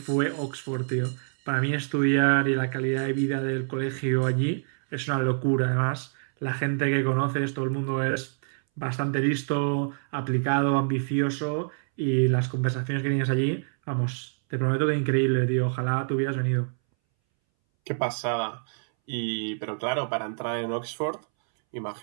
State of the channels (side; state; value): left; silent; 60 dB below the other